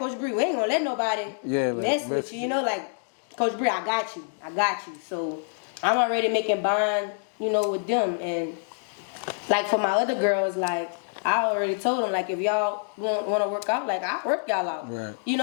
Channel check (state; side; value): silent; right; digital silence